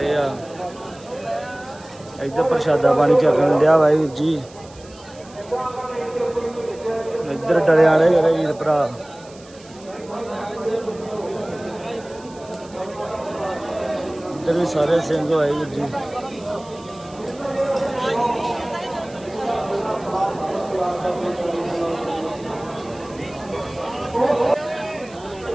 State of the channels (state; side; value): noise; right; hiss, 23 dB below the sound